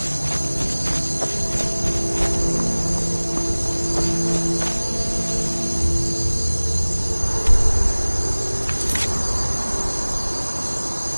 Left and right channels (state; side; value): inverted; both; correlation -1.00